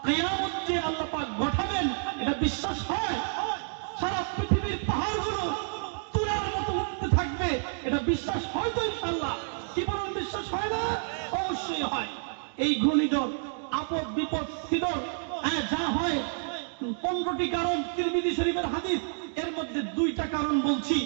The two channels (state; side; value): silent; left; digital silence